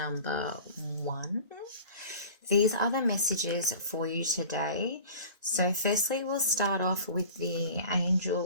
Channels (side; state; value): both; inverted; correlation -0.41